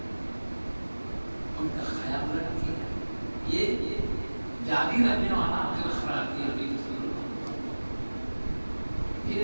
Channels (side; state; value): both; inverted; correlation -1.00